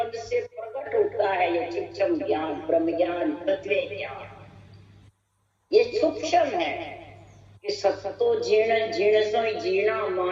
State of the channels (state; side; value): identical; both; correlation 1.00